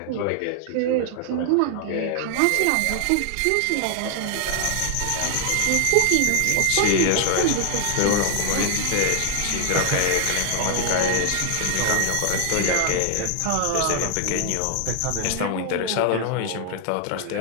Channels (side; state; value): both; different; correlation 0.00